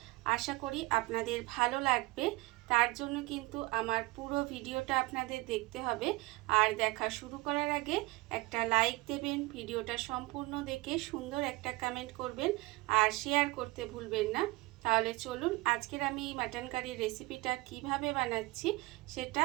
আশা করি আপনাদের ভালো লাগবে। তার জন্য কিন্তু আমার পুরো ভিডিওটা আপনাদের দেখতে হবে। আর দেখা শুরু করার আগে একটা লাইক দেবেন, ভিডিওটা সম্পূর্ণ দেখে সুন্দর একটা কমেন্ট করবেন আর শেয়ার করতে ভুলবেন না। তাহলে চলুন আজকের আমি এই মাটন কারির রেসিপিটা কিভাবে বানাচ্ছি সেটা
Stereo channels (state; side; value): quieter; left; 21.9 dB